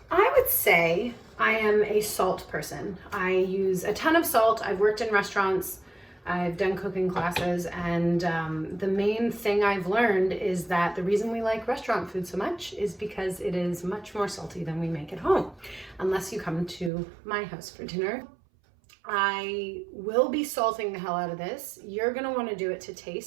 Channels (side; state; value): left; drops out; at 16.9 s